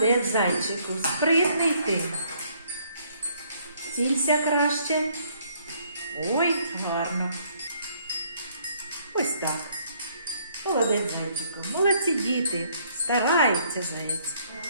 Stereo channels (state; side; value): inverted; both; correlation -0.65